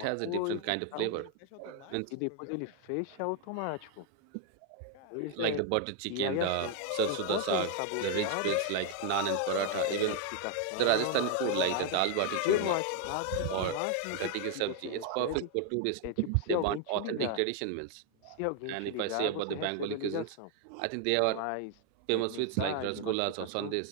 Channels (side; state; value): both; different; correlation 0.00